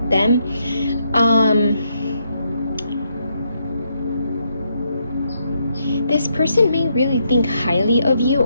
them. This person may really think highly of you,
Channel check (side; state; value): both; inverted; correlation -0.77